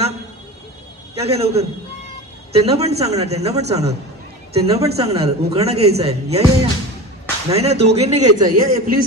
क्या काय लवकर, त्यांना पण सांगणार उखाणा घ्यायचा आहे. या या या, नाही ना दोघींनी घ्यायचा. या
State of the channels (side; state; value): both; normal; correlation 0.31